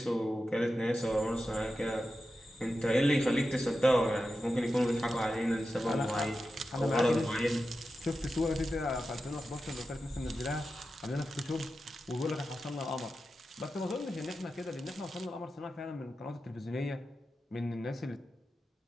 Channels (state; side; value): normal; both; correlation 0.91